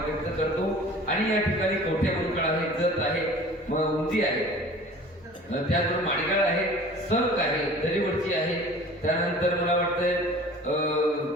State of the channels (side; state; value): both; normal; correlation 0.44